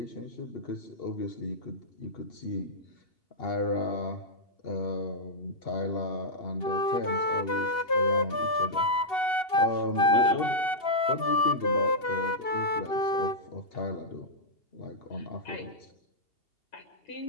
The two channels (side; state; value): right; late; 2.8 ms